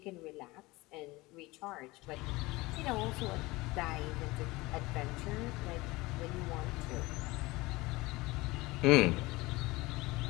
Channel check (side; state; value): right; quieter; 21.5 dB